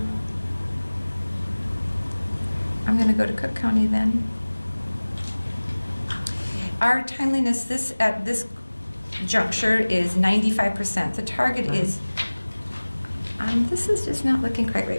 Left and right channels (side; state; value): both; inverted; correlation -1.00